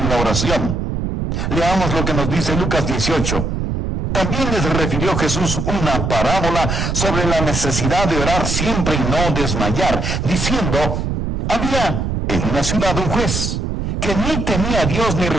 la oración. Leamos lo que nos dice Lucas 18. También les refirió Jesús una parábola sobre la necesidad de orar siempre y no desmayar, diciendo, había en una ciudad un juez que ni temía a Dios ni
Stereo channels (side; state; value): right; noise; rumble, 1 dB below the sound